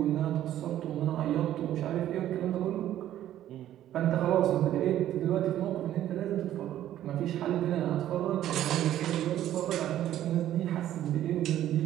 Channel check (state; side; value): quieter; left; 12.3 dB